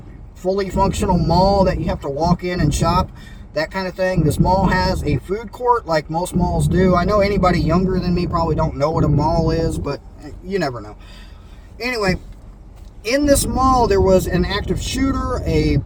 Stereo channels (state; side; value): identical; both; correlation 1.00